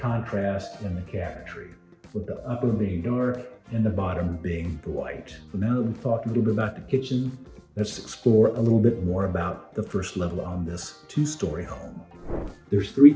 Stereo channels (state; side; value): identical; both; correlation 1.00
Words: in the cabinetry, with the upper being dark and the bottom being the white. So now that we've talked a little bit about the kitchen, let's explore a little bit more about the first level on this 2-story home. There's 3